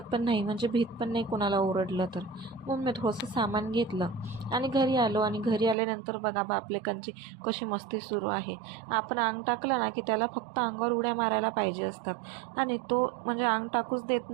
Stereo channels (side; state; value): left; drops out; at 5.8 s